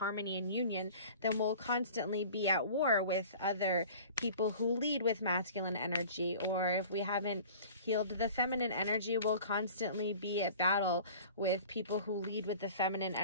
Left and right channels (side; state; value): both; inverted; correlation -0.43